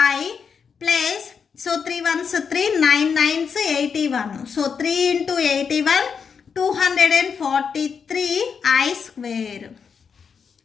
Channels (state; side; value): quieter; right; 6.3 dB